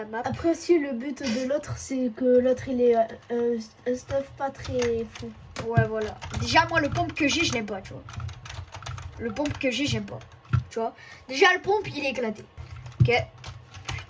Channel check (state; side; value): identical; both; correlation 1.00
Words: map. Après aussi, le but de l'autre, c'est que l'autre, il ait un stuff pas très fou. Ouais, voilà. Déjà, moi, le pompe que j'ai, je l'aime pas, tu vois. Le pompe que j'ai, j'aime pas. Tu vois. Déjà, le pompe, il est éclaté. Ok.